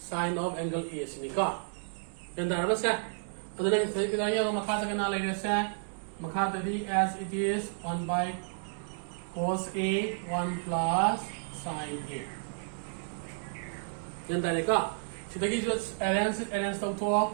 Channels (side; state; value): left; silent; digital silence